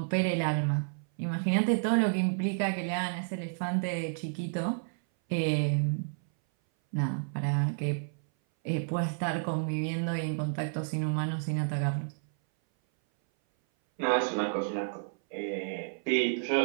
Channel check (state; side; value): silent; left; 57 dB below the other